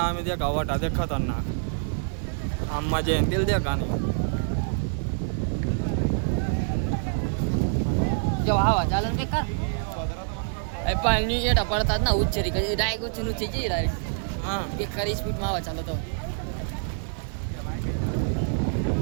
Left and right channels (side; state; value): left; silent; 61 dB below the other